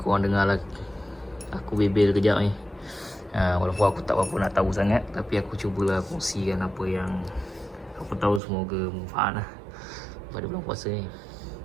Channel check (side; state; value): left; drops out; at 8.4 s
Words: dengar lah aku bebel kejap ni. Walaupun aku tak apa nak tahu sangat, tapi aku cubalah kongsikan apa yang aku tahu, semoga manfaat lah pada bulan puasa ni.